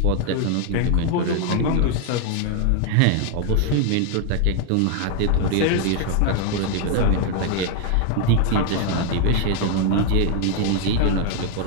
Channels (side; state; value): both; different; correlation 0.00